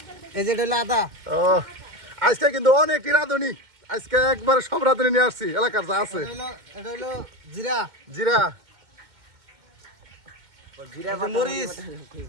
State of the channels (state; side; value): late; left; 2.1 ms